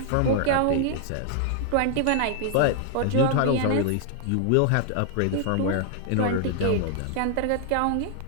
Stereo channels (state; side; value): different; both; correlation 0.00